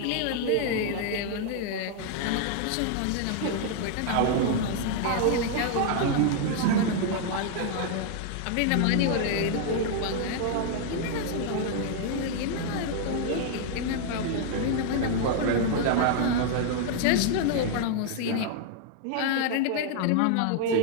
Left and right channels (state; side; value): different; both; correlation 0.00